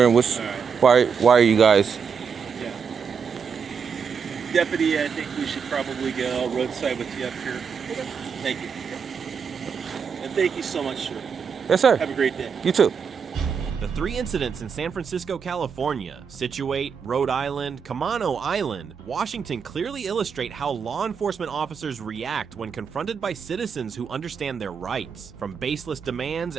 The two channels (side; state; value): left; quieter; 6.4 dB